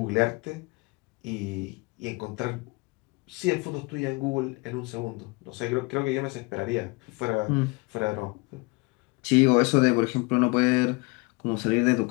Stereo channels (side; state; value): right; quieter; 27.3 dB